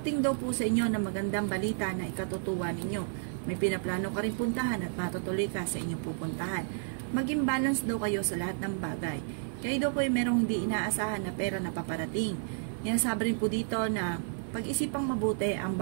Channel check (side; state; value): left; silent; digital silence